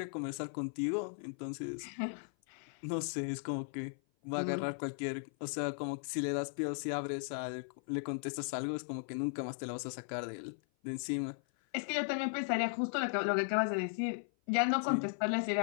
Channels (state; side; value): silent; right; 53 dB below the other